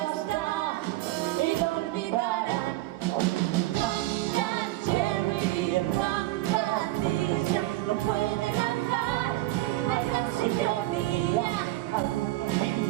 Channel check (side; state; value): left; quieter; 17.6 dB